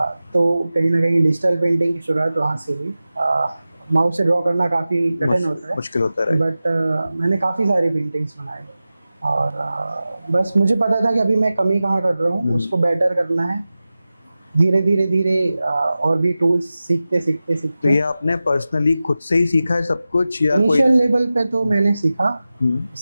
तो कहीं ना कहीं डिजिटल पेंटिंग की शुरुआत वहाँ से हुई। माउस से ड्रॉ करना काफ़ी कठिन होता है, मुश्किल होता है, बट मैंने काफ़ी सारी पेंटिंग्स बनाई, और बस मुझे पता था कि अभी मैं कमी कहाँ कर रहा हूँ, उसको बेटर करना है। धीरे धीरे और भी टूल्स सीखते। तो ये आपने पर्सनली खुद से ही सीखा है सब कुछ, या इनिशियल लेवल पे तो मैंने सीखा।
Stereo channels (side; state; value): both; inverted; correlation -0.95